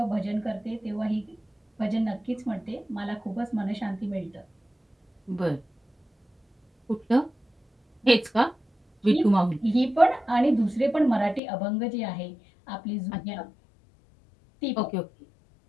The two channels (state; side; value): drops out; right; at 11.4 s